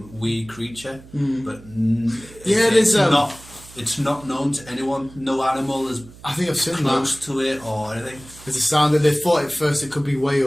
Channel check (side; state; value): right; noise; hum, 21 dB below the sound